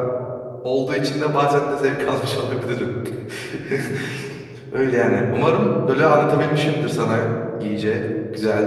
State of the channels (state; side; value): identical; both; correlation 1.00